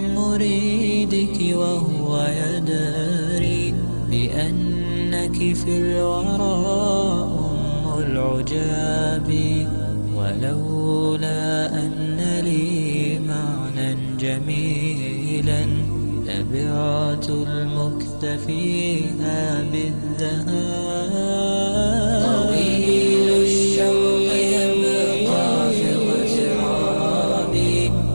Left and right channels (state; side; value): inverted; both; correlation -1.00